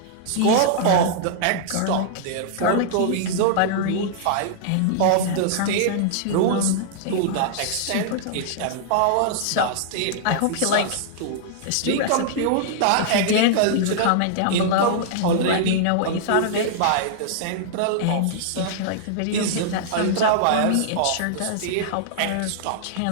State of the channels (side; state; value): both; different; correlation -0.01